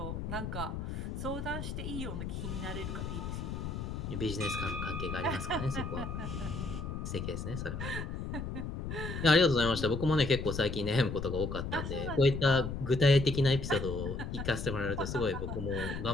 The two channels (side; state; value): left; noise; rumble, 5 dB below the sound